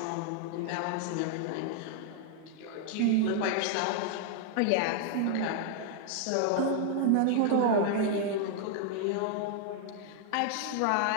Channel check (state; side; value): different; both; correlation 0.00